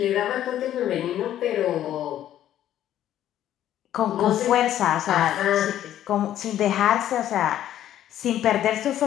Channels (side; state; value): right; quieter; 11.8 dB